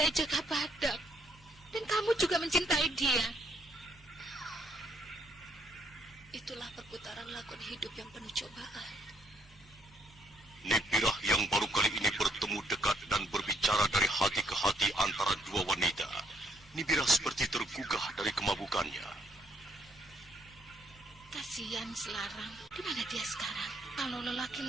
Jaka Badak? Dan kamu juga mencintai dia? Itulah perputaran lakon hidup yang penuh cobaan. Nibirah yang baru kali ini bertemu dekat dan berbicara dari hati ke hati antara dua wanita. Nibirah seperti tergugah dari kemabukannya. Kasihan Selarang, di mana dia sekarang? Kalau lelaki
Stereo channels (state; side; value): normal; both; correlation 0.69